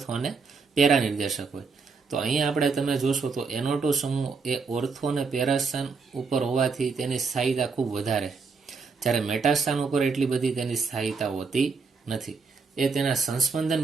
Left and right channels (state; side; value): quieter; left; 4.9 dB